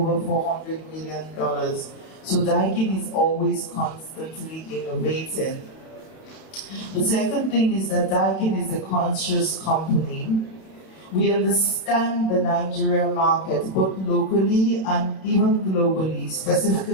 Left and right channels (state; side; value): late; right; 31 ms